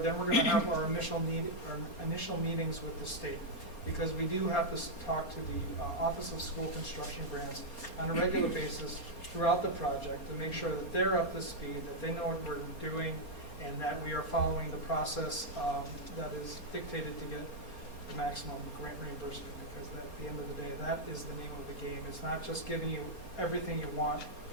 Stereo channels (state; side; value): late; right; 4.3 ms